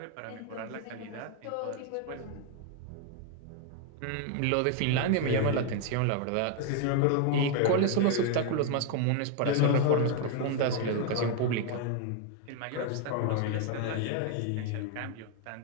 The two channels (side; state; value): both; different; correlation 0.00